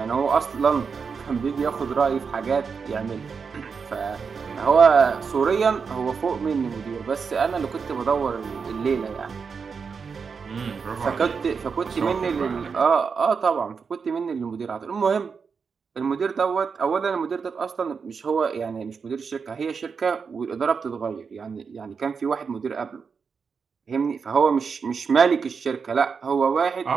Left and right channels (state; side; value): quieter; left; 5.7 dB